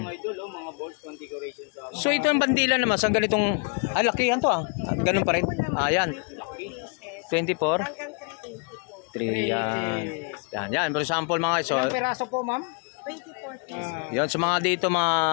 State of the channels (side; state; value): right; quieter; 36.4 dB